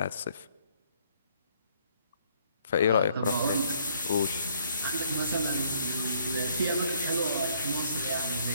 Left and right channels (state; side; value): inverted; both; correlation -0.65